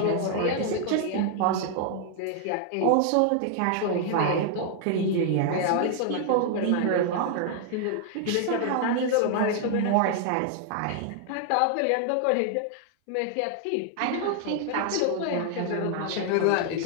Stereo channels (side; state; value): both; different; correlation 0.00